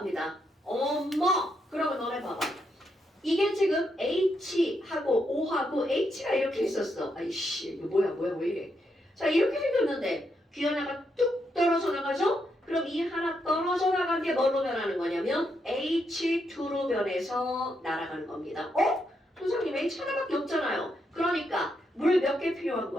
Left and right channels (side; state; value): both; normal; correlation 0.80